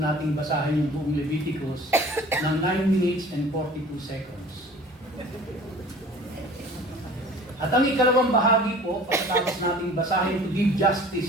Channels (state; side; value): normal; both; correlation 0.45